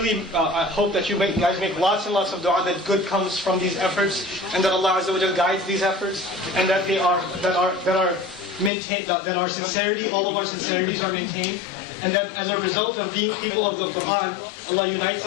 I hope that you guys make lots and lots of du'a that good comes from these efforts, and that Allah Azza wa Jal guides these efforts, and that are maintained, that our sincerity, all of our sincerities are maintained, and that as a result of being people of the Quran, Allah unites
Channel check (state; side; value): drops out; right; at 8.7 s